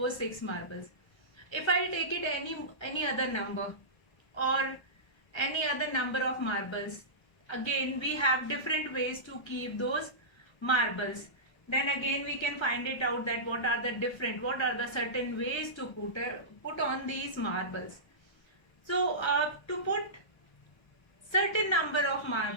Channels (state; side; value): late; right; 1.3 ms